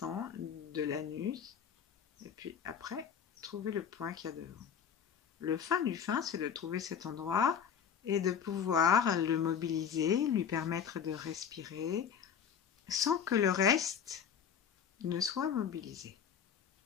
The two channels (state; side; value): quieter; right; 7.7 dB